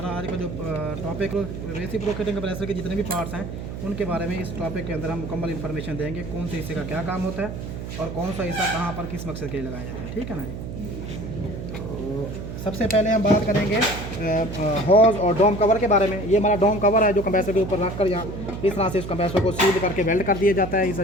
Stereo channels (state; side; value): noise; right; hum, 8 dB below the sound